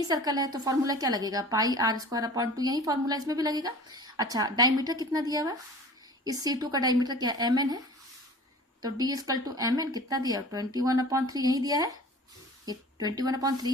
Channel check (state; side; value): normal; both; correlation 0.41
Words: सर्कल है तो फॉर्मूला क्या लगेगा पाई r²/2, यही फॉर्मूला इसमें भी लगेगा। अच्छा डायमीटर कितना दिया हुआ है, इस C2 का डायमीटर क्या एम एन है, तो d equal to M N कितना दिया 21/3 यही दिया है, ये